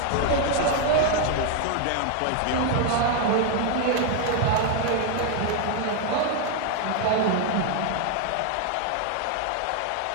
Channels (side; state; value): both; different; correlation 0.00